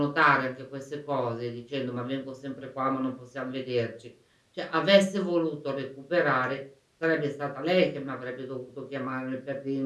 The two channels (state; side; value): identical; both; correlation 1.00